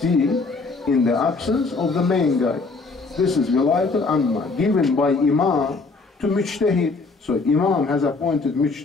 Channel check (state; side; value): quieter; right; 4.0 dB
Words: in the absence of the main guy. This is Wilayat al-Amma, given by Imam to Mujtahid. So Imam has appointed